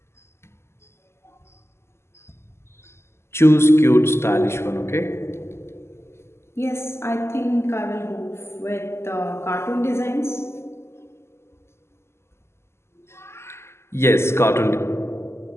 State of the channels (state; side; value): late; right; 0.12 ms